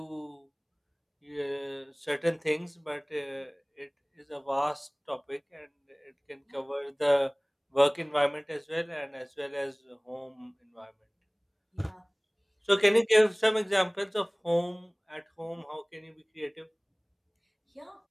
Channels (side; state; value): both; identical; correlation 1.00